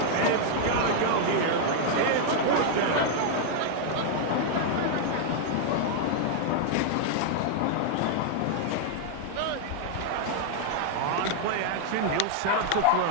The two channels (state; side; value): different; both; correlation -0.01